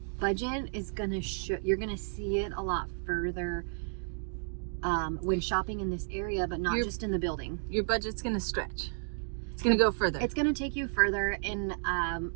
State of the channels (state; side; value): silent; left; digital silence